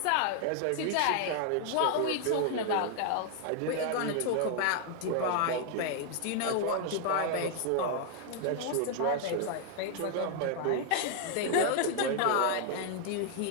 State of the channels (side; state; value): both; different; correlation 0.00